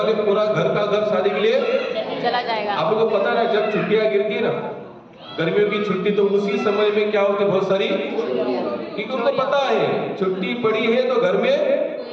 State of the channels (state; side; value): identical; both; correlation 1.00